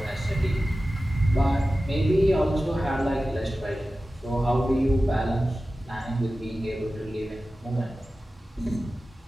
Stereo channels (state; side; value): normal; both; correlation 0.95